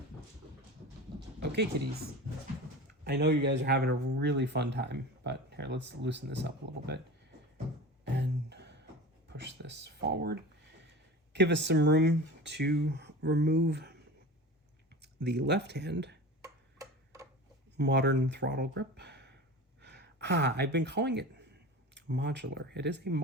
Okay, kitties. I know you guys are having a really fun time, but here, let's loosen this up a little bit and push this forward. Give us some room to remove the left hand modern throttle grip. I've been calling it modular. It is a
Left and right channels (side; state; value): both; normal; correlation 0.33